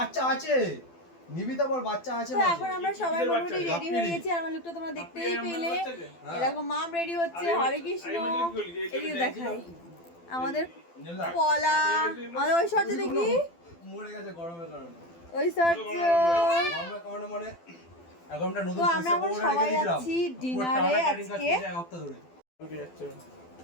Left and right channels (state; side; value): late; right; 12 ms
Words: আচ্ছা আছে নিবিতা বল, বাচ্চা আছে। তো এখন আমরা সবাই মোটামুটি রেডি হয়ে গেছি। আর আমার লুকটা তোমরা দেখতেই পেলে। এরকম মাম রেডি হচ্ছে, হরে কৃষ্ণ এদিকে দেখাই আমাদের পলা, আমাদের ওই শর্টে দেখি মরে গেছে গরমের কারণে। ওই শর্ট গরমের কারণে মানে এখন আমরা নতুন আমরা এখন সবাই যাচ্ছি ডিনারে আজকে। এক সপ্তাহ ধরে